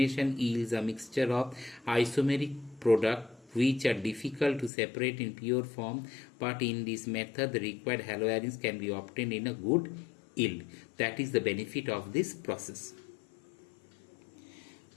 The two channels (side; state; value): right; drops out; at 4.7 s